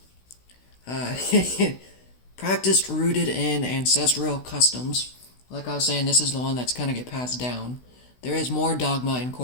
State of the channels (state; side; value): late; right; 16 ms